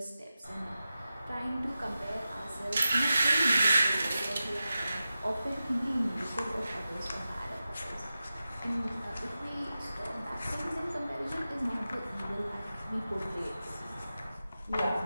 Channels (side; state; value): both; inverted; correlation -0.93